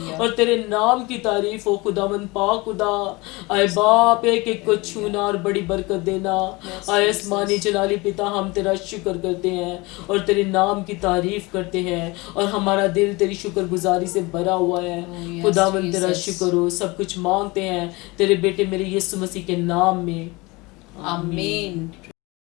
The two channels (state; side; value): quieter; right; 24.0 dB